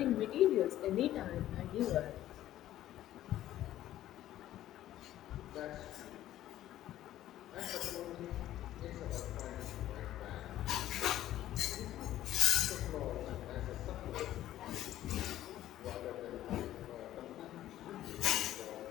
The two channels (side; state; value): right; quieter; 13.3 dB